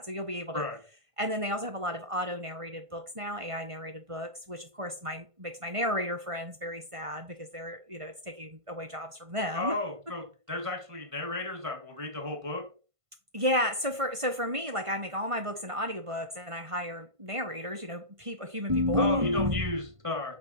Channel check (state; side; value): late; left; 1.5 ms